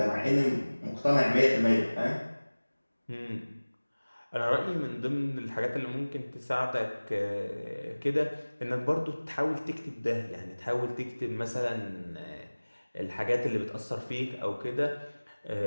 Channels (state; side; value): inverted; both; correlation -1.00